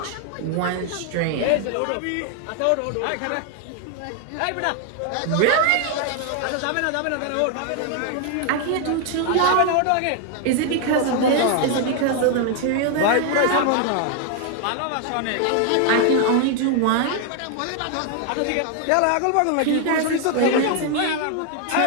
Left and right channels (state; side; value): different; both; correlation 0.00